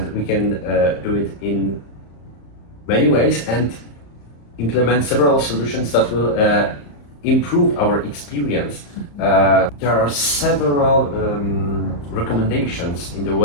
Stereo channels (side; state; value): right; late; 35 ms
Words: we can do it in many ways and implement several solutions that will improve our experience. There are several recommendations in the